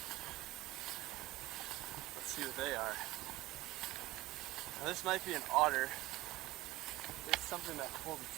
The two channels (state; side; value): quieter; left; 18.2 dB